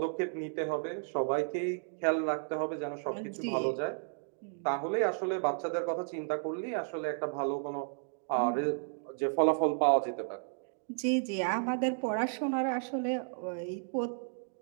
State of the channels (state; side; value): silent; left; digital silence